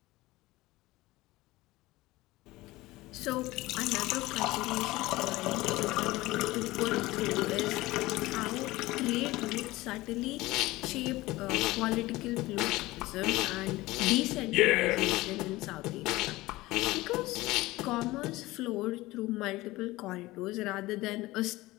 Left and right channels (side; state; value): right; quieter; 19.2 dB